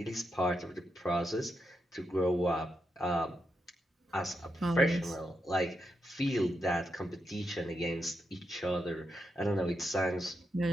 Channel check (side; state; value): both; normal; correlation 0.85